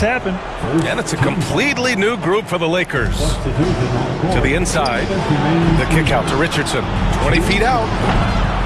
happen. And it's a completely new group for the Lakers. To the inside. The kick out to Richardson. 20 feet out.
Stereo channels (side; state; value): both; identical; correlation 1.00